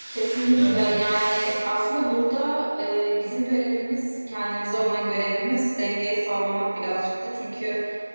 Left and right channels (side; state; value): both; inverted; correlation -1.00